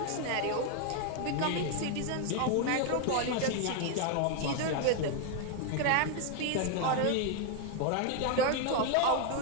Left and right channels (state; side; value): different; both; correlation 0.01